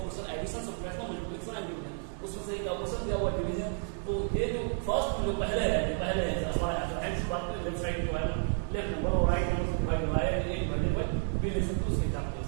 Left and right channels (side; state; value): left; silent; 57 dB below the other